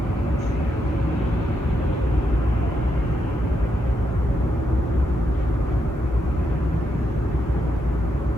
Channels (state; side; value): normal; both; correlation 0.81